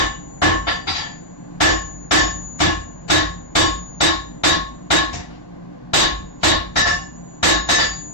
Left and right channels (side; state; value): right; late; 1.0 ms